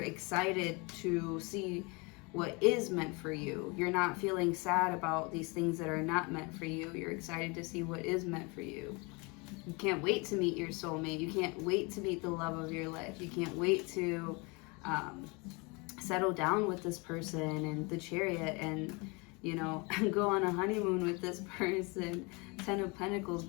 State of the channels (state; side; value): quieter; right; 28.8 dB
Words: excited to see what is meant for you. You're not feeling sad about these things that are not meant for you. You're excited to see what is meant for you. You can't wait to meet your soulmate. You can't wait to meet the love of your life. You can't wait to settle down with this person and the Chariot and, you know, go on a honeymoon with this person. 10 of Pentacles,